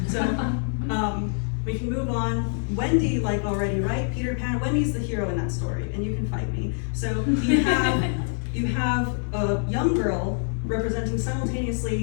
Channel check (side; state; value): right; silent; 61 dB below the other